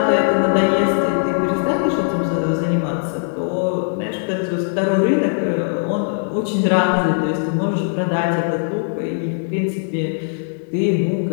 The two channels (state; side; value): silent; right; 57 dB below the other